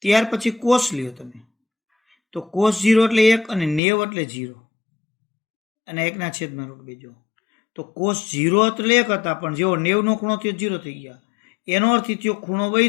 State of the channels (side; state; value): right; drops out; at 3.8 s